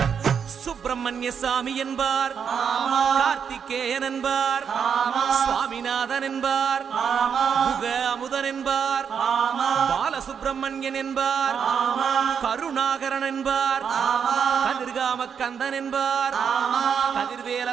சுப்பிரமணிய சாமி என்பார், கார்த்திகேயன் என்பார், சுவாமிநாதன் என்பார், முக அமுதன் என்பார், பாலசுப்பிரமணியன் என்பார், கருணாகரன் என்பார், கதிர்காம கந்தன் என்பார், கதிர்வேல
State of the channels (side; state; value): left; quieter; 7.1 dB